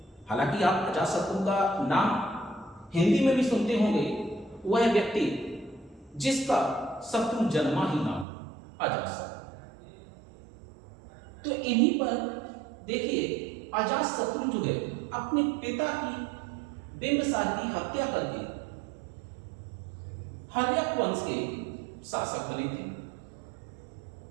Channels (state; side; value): drops out; left; at 8.2 s